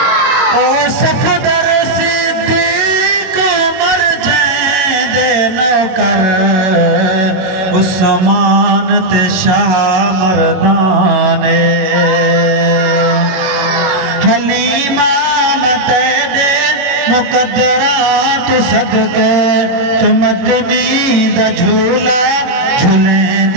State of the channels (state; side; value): late; left; 22 ms